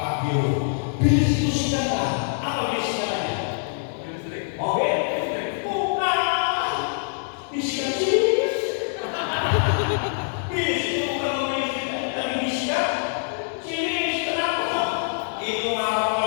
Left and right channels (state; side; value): silent; right; digital silence